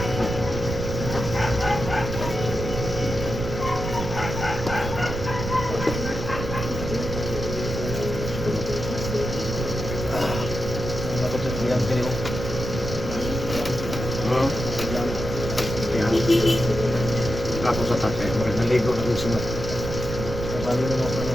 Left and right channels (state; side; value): noise; right; rumble, 5 dB below the sound